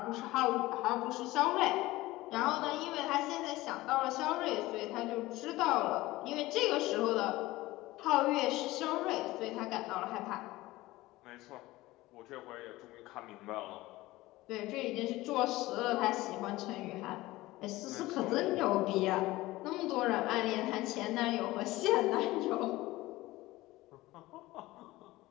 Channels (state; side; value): quieter; right; 18.5 dB